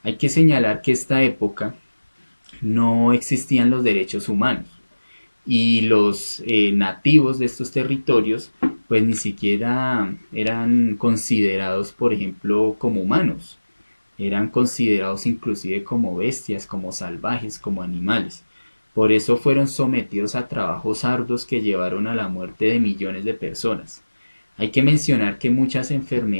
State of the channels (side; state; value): both; inverted; correlation -1.00